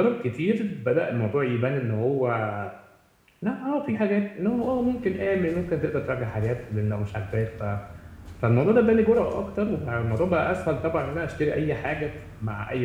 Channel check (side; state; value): both; identical; correlation 1.00